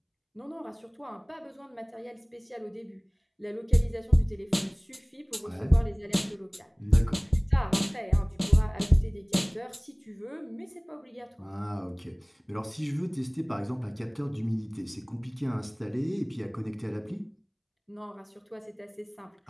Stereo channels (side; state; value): both; identical; correlation 1.00